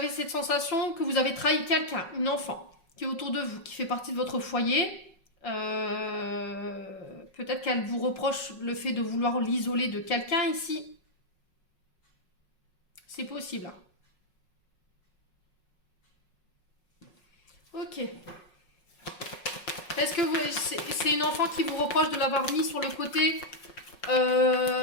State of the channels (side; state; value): right; late; 5.5 ms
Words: cette sensation que vous avez trahi quelqu'un, une enfant, qui est autour de vous, qui fait partie de votre foyer? Peut-être qu'elle vous reproche le fait de vouloir l'isoler de quelqu'un ici. C'est possible. Ok. Est-ce que c'est une enfant qui vous reproche de l'avoir mis sur le côté